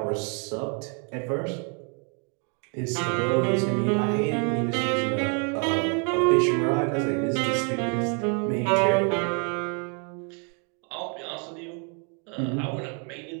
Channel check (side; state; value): left; quieter; 37.5 dB